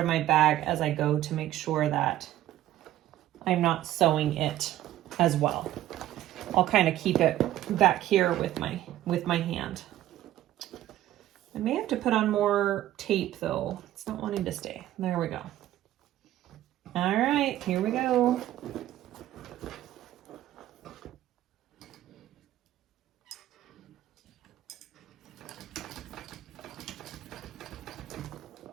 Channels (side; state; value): left; quieter; 13.7 dB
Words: my bag as I go to make sure that I'm not sewing it as well. I'll kind of keep it back here with my hand. I may have to put on more tape though. It's not wanting to stay. There we go. All right, here we go.